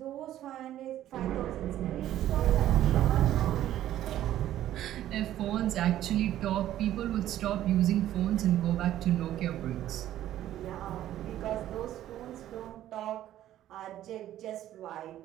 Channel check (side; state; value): left; quieter; 12.7 dB